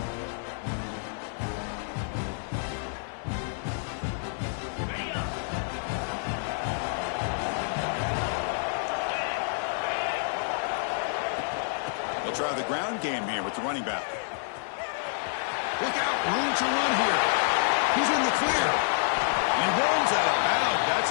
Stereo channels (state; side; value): silent; right; 59 dB below the other